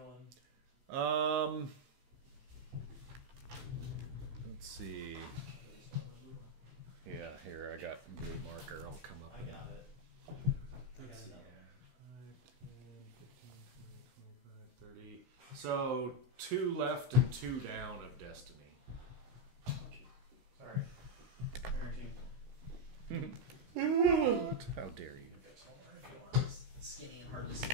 going? Let's see. Yeah, here I got blue marker. I'll come up. I got it. Let's see. 5, 10, 15, 20, 25, 30. So 2 left and 2 down of destiny. Sorry. Parenting. What? How dare you? Skinny and hard to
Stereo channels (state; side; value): late; left; 15 ms